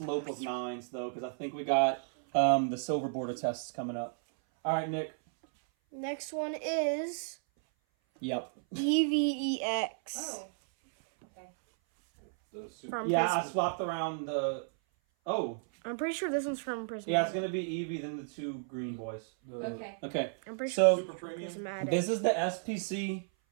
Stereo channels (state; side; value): silent; left; 56 dB below the other